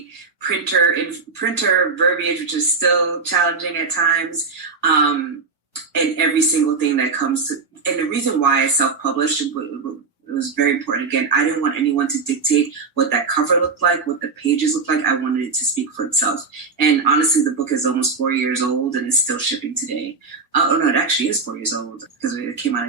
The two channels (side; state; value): left; quieter; 4.5 dB